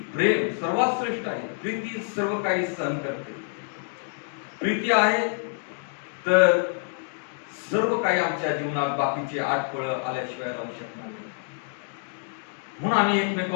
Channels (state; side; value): silent; right; 58 dB below the other